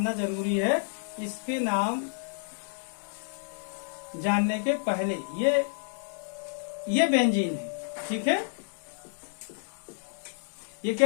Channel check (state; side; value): silent; right; digital silence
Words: जरूरी है। इसके नाम जानने के पहले ये बेंजीन है। ठीक है, ये